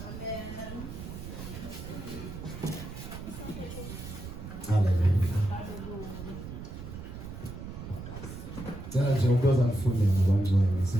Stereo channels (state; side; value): noise; right; rumble, 10 dB below the sound